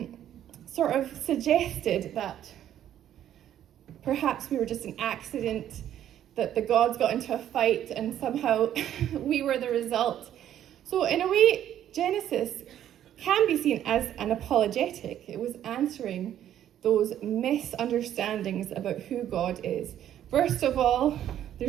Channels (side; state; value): left; quieter; 11.0 dB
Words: sort of suggested that perhaps we were just an accident, that the gods got into a fight and somehow we were the result. So in a way, Genesis can be seen as an apologetic. It was answering those misunderstandings about who God is. First of all,